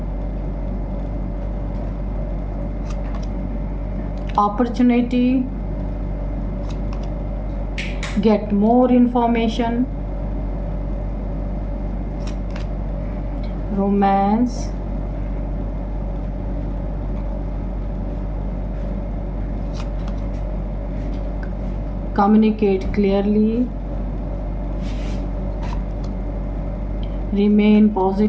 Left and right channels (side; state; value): both; identical; correlation 1.00